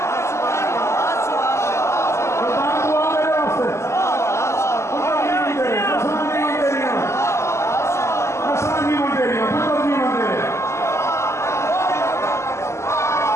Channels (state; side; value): late; right; 0.13 ms